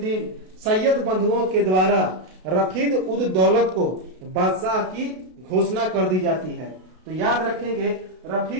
सैयद बंधुओं के द्वारा रफीद उद दौलत को बादशाह की घोषणा कर दी जाती है। तो याद रखेंगे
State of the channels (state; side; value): late; left; 32 ms